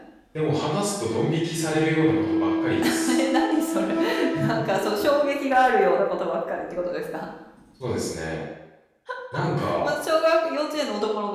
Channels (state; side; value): identical; both; correlation 1.00